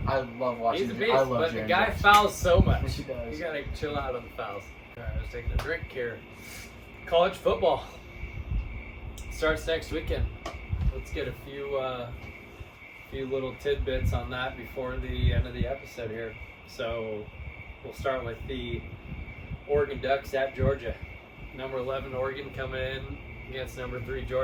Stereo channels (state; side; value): identical; both; correlation 1.00